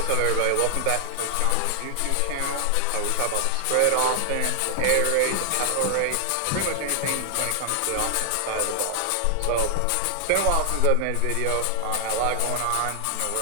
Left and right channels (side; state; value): both; different; correlation 0.00